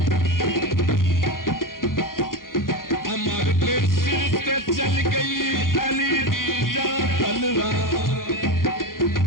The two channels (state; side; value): late; right; 0.90 ms